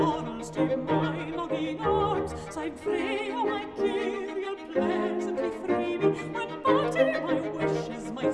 to my longing arms. Side free, oh my king, you'll pleasantly free me, when but my wishes my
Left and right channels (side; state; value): both; identical; correlation 1.00